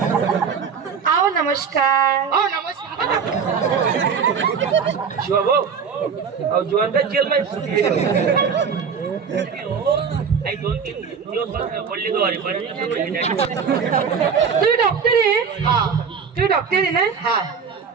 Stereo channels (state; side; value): quieter; left; 6.4 dB